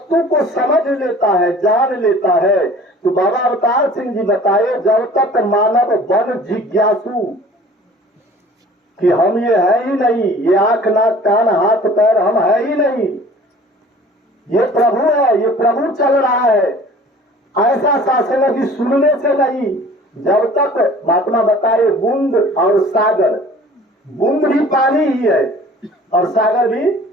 को समझ लेता है, जान लेता है, तो बाबा अवतार सिंह जी बताए जब तक मानव बन जिज्ञासु कि हम ये है ही नहीं, ये आंख नाक कान हाथ पैर हम है ही नहीं, ये प्रभु है, ये प्रभु चल रहा है, ऐसा शासन की सुनने से नहीं। जब तक महात्मा बताए बूंद और सागर, बूंद भी पानी ही है और सागर भी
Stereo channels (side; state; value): both; normal; correlation 0.48